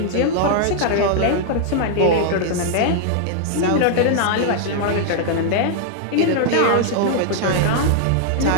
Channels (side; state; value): both; different; correlation -0.01